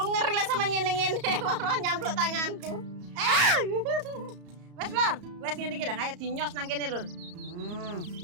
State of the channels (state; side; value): late; left; 34 ms